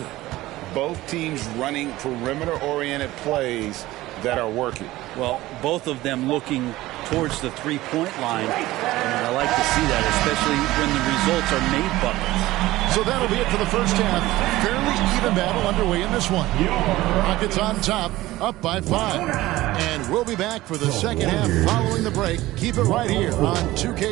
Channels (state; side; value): quieter; left; 17.3 dB